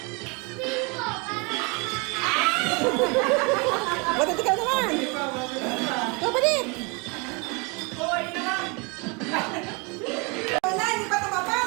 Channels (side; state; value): left; quieter; 30.3 dB